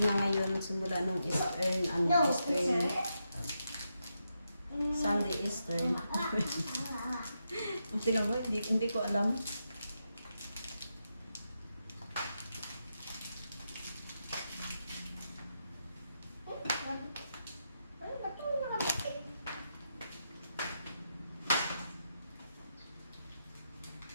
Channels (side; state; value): both; inverted; correlation -0.85